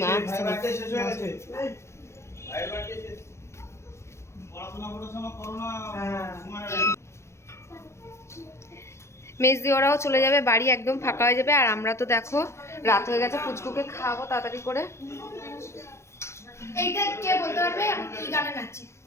মেজদি ওরাও চলে যাবে বাড়ি, একদম ফাঁকা হয়ে যাবে। আর আমরা তো দেখো রাত হয়ে গেছে, পুচকুকে খাওয়াবো তাড়াতাড়ি করে। এইটা কে বলতে পারবে আমি কি গানে নাচি?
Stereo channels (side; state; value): right; late; 0.13 ms